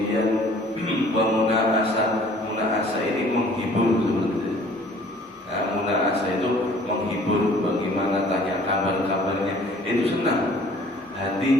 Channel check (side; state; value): both; normal; correlation 0.54